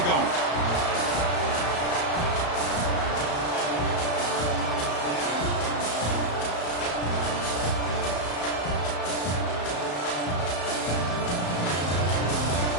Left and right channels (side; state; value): right; late; 34 ms